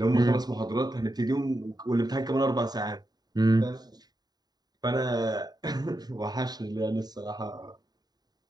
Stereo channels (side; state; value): left; late; 0.20 ms